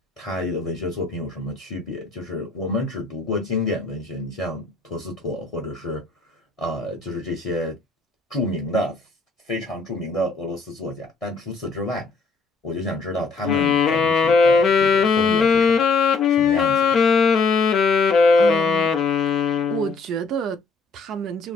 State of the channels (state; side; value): quieter; right; 4.1 dB